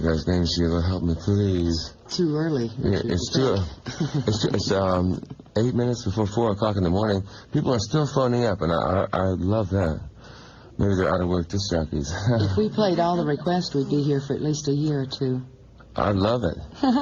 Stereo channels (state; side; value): identical; both; correlation 1.00